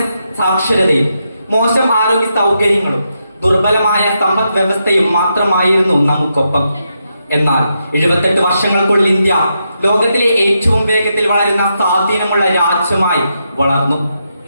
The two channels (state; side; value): inverted; both; correlation -0.83